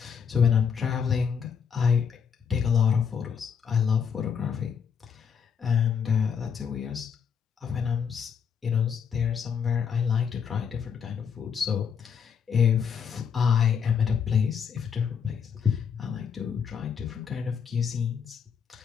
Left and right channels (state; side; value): quieter; right; 7.0 dB